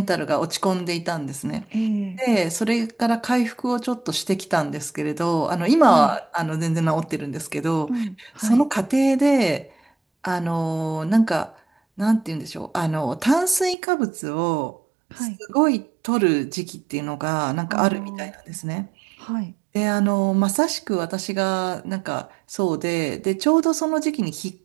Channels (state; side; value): drops out; left; at 13.8 s